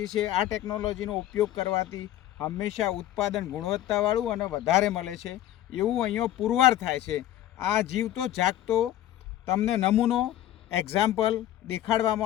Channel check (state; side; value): quieter; right; 13.0 dB